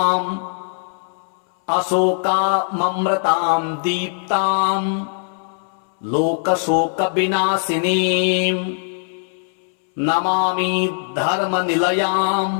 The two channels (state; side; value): silent; right; 64 dB below the other